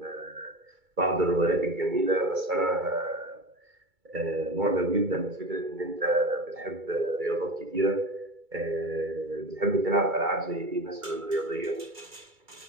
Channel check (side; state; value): left; late; 2.3 ms